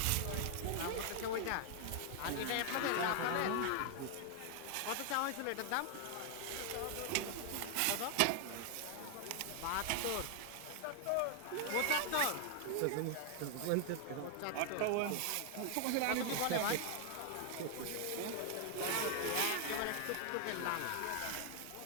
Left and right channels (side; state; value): both; different; correlation 0.00